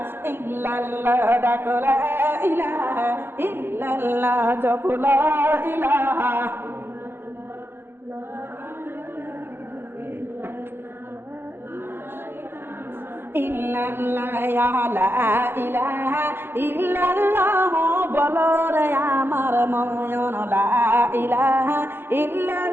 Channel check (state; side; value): late; left; 0.10 ms